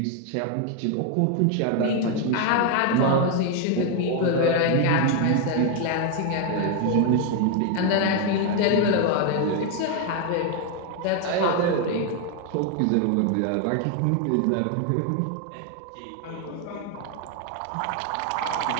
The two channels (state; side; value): different; both; correlation 0.01